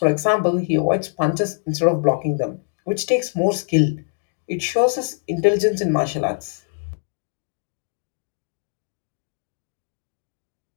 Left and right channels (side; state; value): right; silent; digital silence